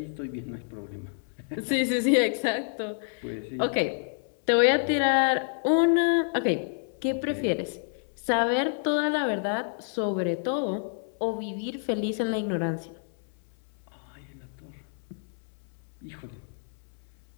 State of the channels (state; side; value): silent; right; 59 dB below the other